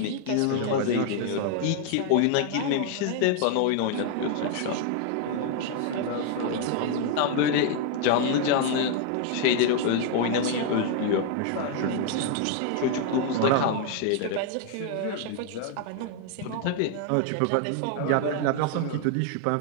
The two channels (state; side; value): different; both; correlation 0.00